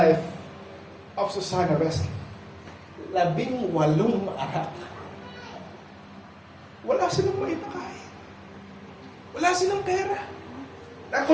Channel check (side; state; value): both; identical; correlation 1.00